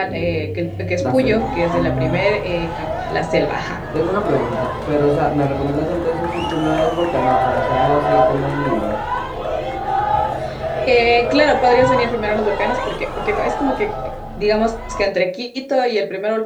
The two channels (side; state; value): both; identical; correlation 1.00